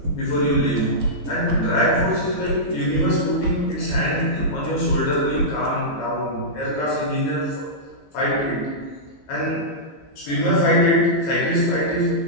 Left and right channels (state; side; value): late; right; 15 ms